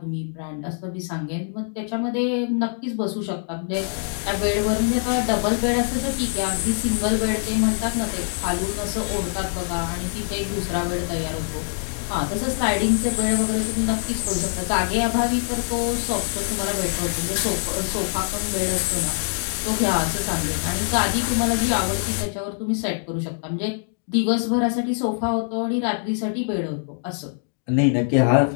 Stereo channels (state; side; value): silent; right; digital silence